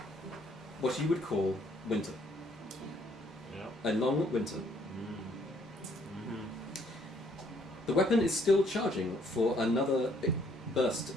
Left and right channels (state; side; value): normal; both; correlation 0.65